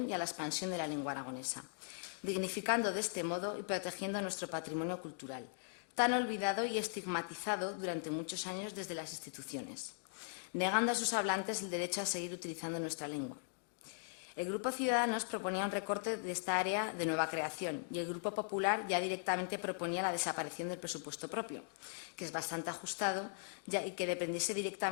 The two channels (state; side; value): silent; right; digital silence